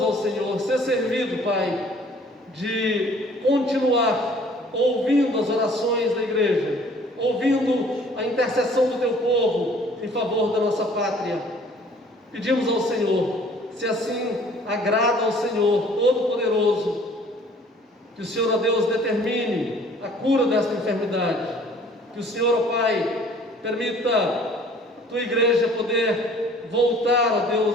ao Senhor, ser servido, Pai, de continuar ouvindo as orações da igreja, ouvindo a intercessão do Teu povo em favor da nossa pátria. Pedimos ao Senhor, se assim agrada ao Senhor Todo-Poderoso, que o Senhor, ó Deus, determine a cura desta enfermidade, que o Senhor, ó Pai, permita a Tua igreja poder voltar, ó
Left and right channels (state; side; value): normal; both; correlation 0.54